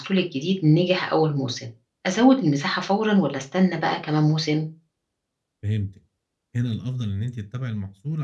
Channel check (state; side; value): identical; both; correlation 1.00